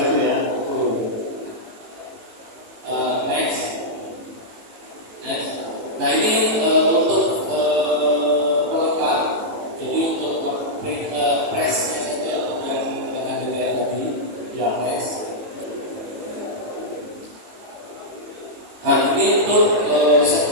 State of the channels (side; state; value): left; late; 18 ms